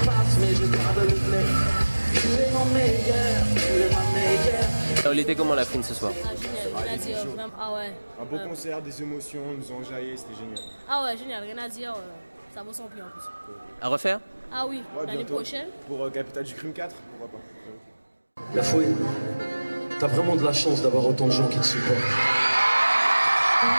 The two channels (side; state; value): both; inverted; correlation -1.00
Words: passent mais je garde le meilleur. Tu es mon meilleur, tu es ma meilleure. Il était comment la fine ce soir? Rien à dire, vraiment. Ah ouais. Un beau concert, des émotions, nous ont enjaillé, c'était génial. Ah ouais, génial, rien à dire. Ça vaut son prix en plus. À refaire? Ah oui, Ouais, l'année bientôt. prochaine. Pour Capital du Crime 4, pourquoi pas. La fouine, t'as vraiment de la chance d'avoir autant de gens qui te supportent.